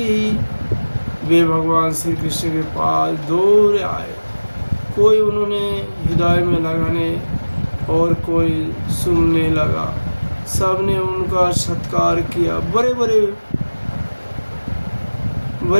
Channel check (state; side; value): inverted; both; correlation -1.00